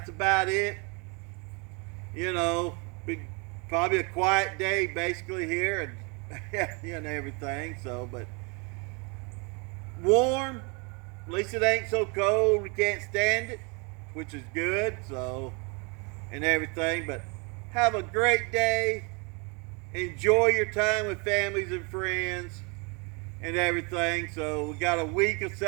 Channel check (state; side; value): quieter; left; 32.0 dB